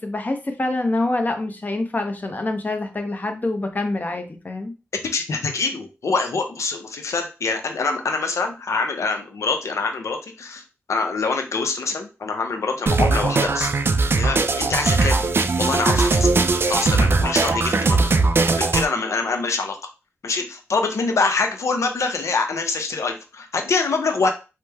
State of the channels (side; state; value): both; normal; correlation 0.63